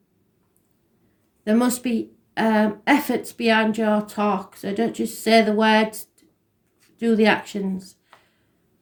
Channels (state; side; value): identical; both; correlation 1.00